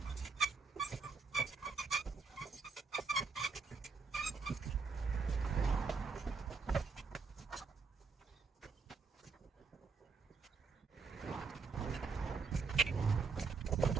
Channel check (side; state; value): left; quieter; 4.8 dB